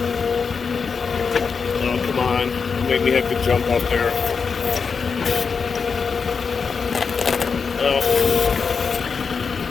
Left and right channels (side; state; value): right; quieter; 5.5 dB